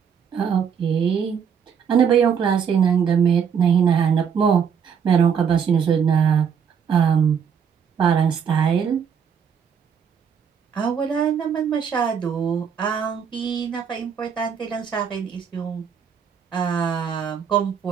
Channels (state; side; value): quieter; left; 7.2 dB